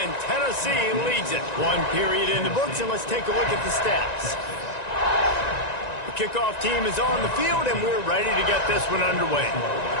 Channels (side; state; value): right; late; 1.9 ms